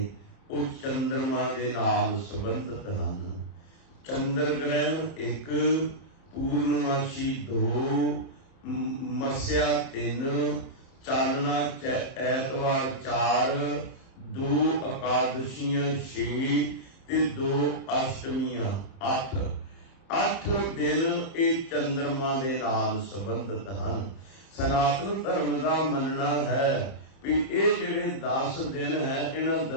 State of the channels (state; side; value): late; right; 30 ms